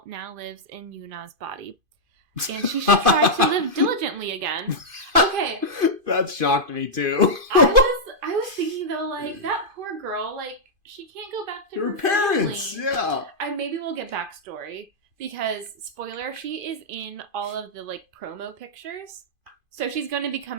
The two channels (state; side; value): late; left; 2.5 ms